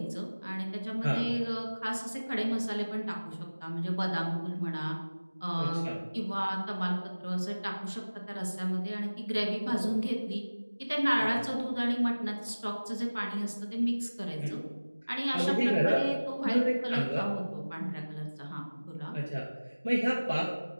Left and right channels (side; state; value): both; inverted; correlation -1.00